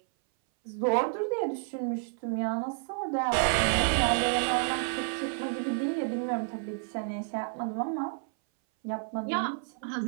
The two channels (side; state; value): left; silent; 58 dB below the other